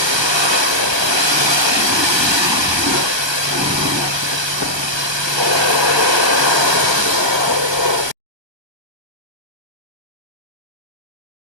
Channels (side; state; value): left; late; 1.3 ms